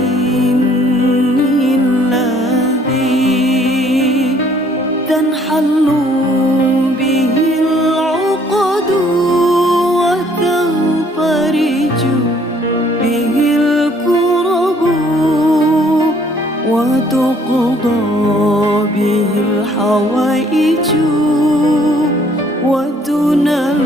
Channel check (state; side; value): normal; both; correlation 0.61